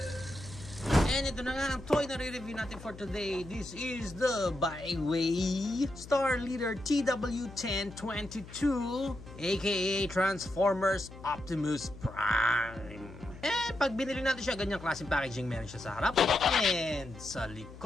And ito na nga ang toy na re-review natin for today. This is the Byway Star Leader TW1022, aka Transformers Optimus Prime. Pag binili natin siya, ganyang klaseng packaging meron siya sa harap, and sa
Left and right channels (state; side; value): noise; left; hum, 16 dB below the sound